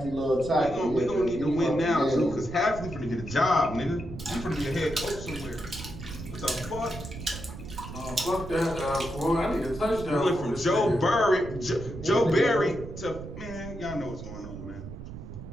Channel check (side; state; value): right; noise; rumble, 11 dB below the sound